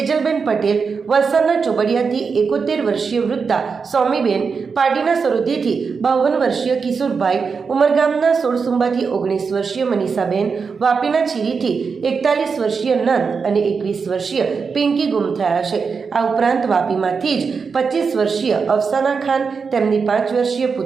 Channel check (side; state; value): left; quieter; 5.4 dB